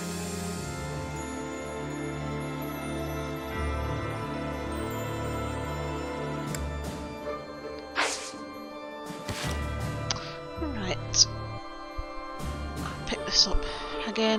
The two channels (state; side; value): identical; both; correlation 1.00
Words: Right. I'll pick this up